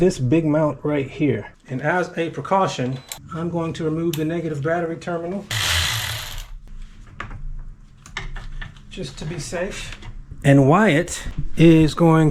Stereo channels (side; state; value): both; identical; correlation 1.00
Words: big mount right here. And as a precaution, I'm going to remove the negative battery terminal just to be safe. And Wyatt is